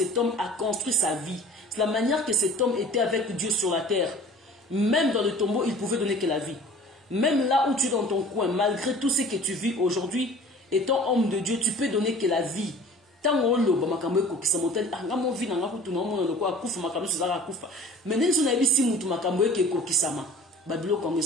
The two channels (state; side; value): normal; both; correlation 0.46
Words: homme a construit sa vie. C'est la manière que cet homme était avec Dieu sur la terre. Même dans le tombeau, il pouvait donner que la vie. Même là où tu es dans ton coin, malgré tout ce que tu vis aujourd'hui, étant homme de Dieu, tu peux donner que la vie. Tant on loba makambo ko kisamotel anga mo vina nga kutu na mo ko akufa makambo suzaka akufa. Mais ndenzo na bisi mutu makambo ke ko kisama. Babilo ko